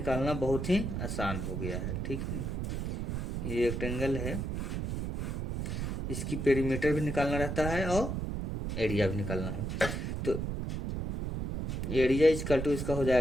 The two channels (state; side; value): noise; right; rumble, 3 dB below the sound